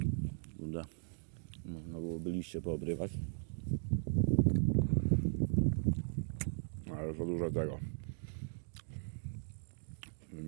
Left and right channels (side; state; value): left; silent; digital silence